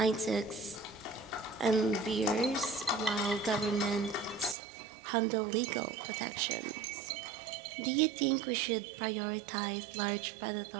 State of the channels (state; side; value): drops out; left; at 4.5 s